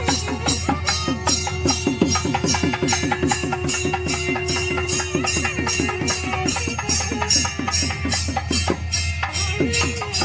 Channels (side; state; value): both; identical; correlation 1.00